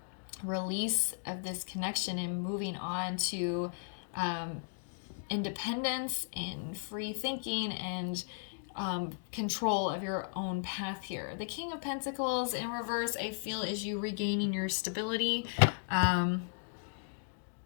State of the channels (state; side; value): silent; right; digital silence